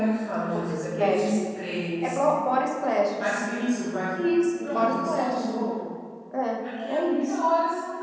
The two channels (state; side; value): identical; both; correlation 1.00